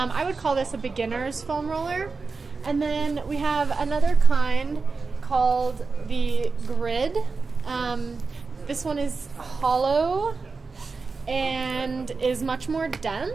would call this a beginner's foam roller. And then we have another kind called the grid. This one is hollow and is much more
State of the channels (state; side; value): quieter; left; 4.4 dB